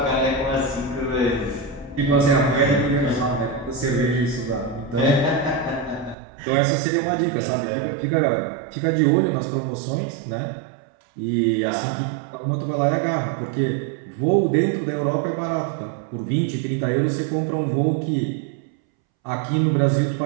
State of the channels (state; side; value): drops out; left; at 6.2 s